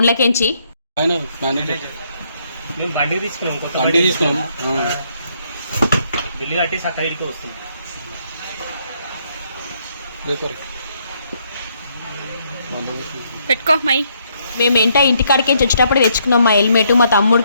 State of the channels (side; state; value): both; inverted; correlation -0.72